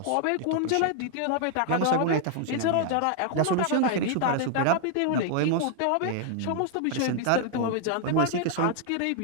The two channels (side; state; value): both; different; correlation 0.00